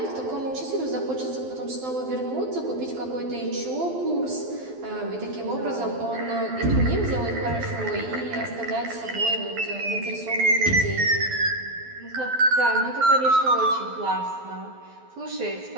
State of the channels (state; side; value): late; left; 12 ms